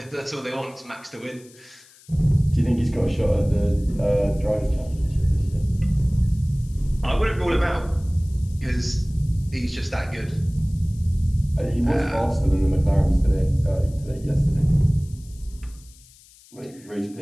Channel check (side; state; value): left; noise; hiss, 25 dB below the sound